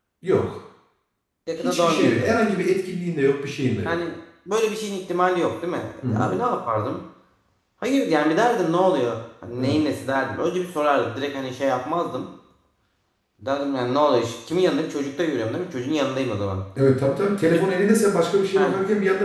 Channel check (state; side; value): identical; both; correlation 1.00